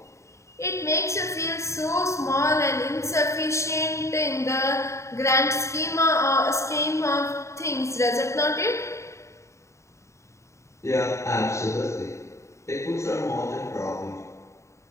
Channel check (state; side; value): late; right; 0.14 ms